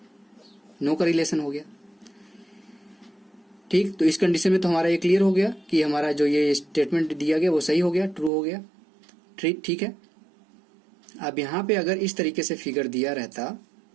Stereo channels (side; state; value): left; drops out; at 8.3 s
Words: नो का रिलेशन हो गया। ठीक, तो इस कंडीशन में तो हमारा ये क्लियर हो गया कि हमारा जो ये स्टेटमेंट दिया गया वो सही हो गया, ट्रू हो गया। ठीक है। अब यहां पे अगर इस तरीके से फिगर दिया रहता,